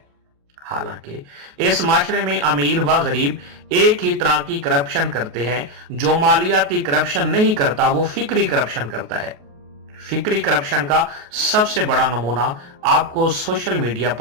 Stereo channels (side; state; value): left; late; 28 ms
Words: हालांकि इस माशरे में अमीर व गरीब एक ही तरह की करप्शन करते हैं। जो मालियाती करप्शन नहीं करता वो फिक्री करप्शन करता है। फिक्री करप्शन का सबसे बड़ा नमूना आपको सोशल मीडिया